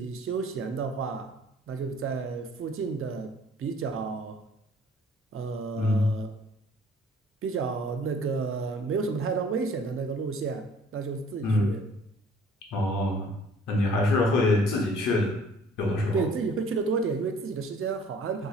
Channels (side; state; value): both; normal; correlation 0.54